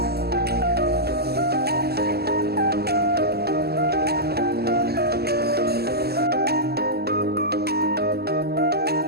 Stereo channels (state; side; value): late; left; 0.46 ms